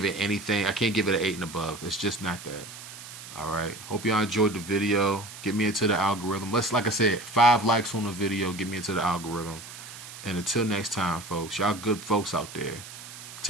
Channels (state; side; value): noise; right; hiss, 14 dB below the sound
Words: it anything. I can't give it an 8 and above. It's just not that. All right. Hope y'all enjoyed the video. Get me into the algorithm. Like I said, 5 likes on the video. Get me into the algorithm. And until next time, folks, y'all good folks out there.